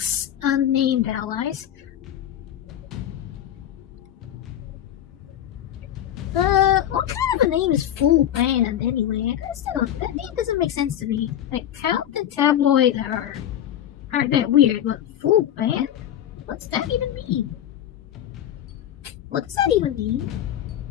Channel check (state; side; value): quieter; right; 11.0 dB